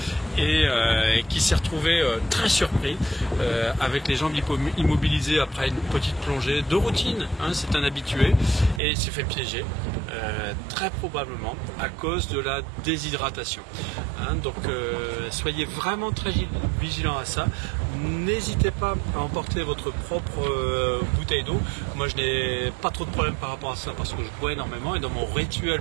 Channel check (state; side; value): drops out; left; at 8.8 s